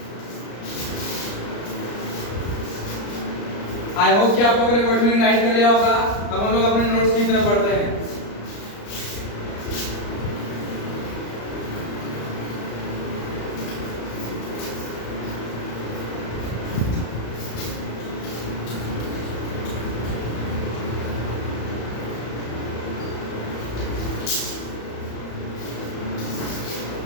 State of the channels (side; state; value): right; late; 34 ms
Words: आई होप कि आप लोगों ने वर्डमीनिंग राइट कर लिया होगा। अब हम लोग अपने नोट्स की तरफ बढ़ते हैं।